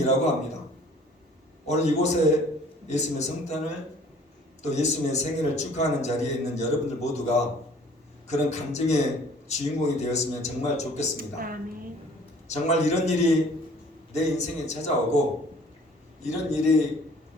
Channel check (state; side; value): normal; both; correlation 0.53